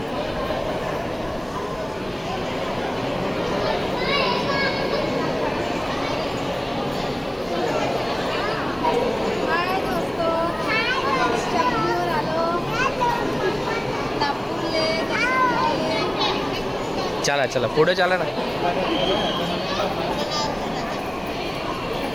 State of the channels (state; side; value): noise; right; hiss, 29 dB below the sound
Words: चला चला पुढे चला ना।